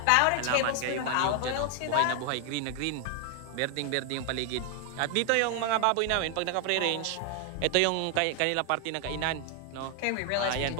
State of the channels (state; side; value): different; both; correlation 0.00